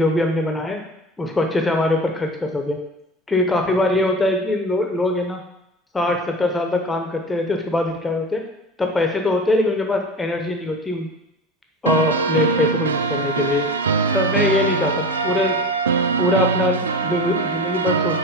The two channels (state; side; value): normal; both; correlation 0.32